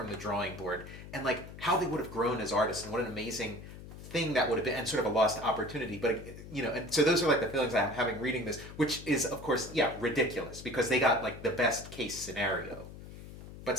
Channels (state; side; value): noise; left; hum, 14 dB below the sound